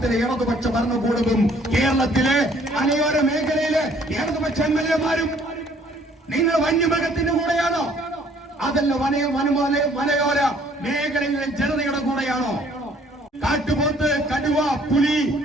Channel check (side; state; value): both; normal; correlation 0.60